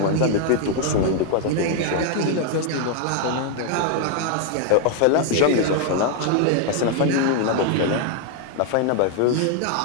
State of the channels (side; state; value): both; different; correlation 0.00